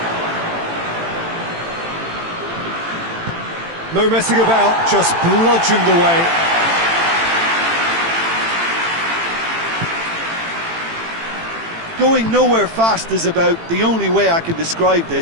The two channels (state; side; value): late; left; 18 ms